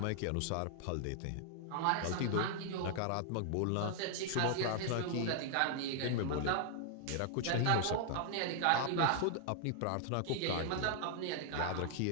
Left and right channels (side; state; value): both; different; correlation -0.01